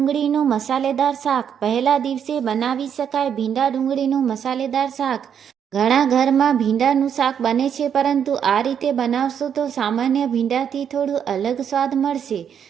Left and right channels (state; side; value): quieter; left; 8.2 dB